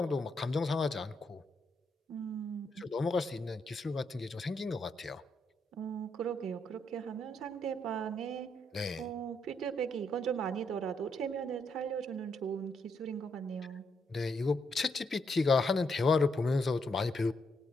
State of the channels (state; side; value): normal; both; correlation 0.77